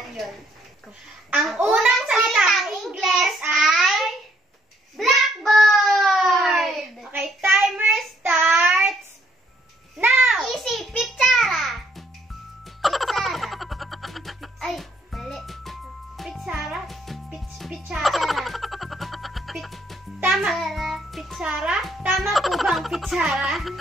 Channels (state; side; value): normal; both; correlation 0.68